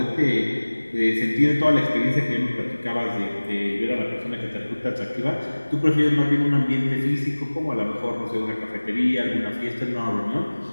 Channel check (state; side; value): inverted; both; correlation -1.00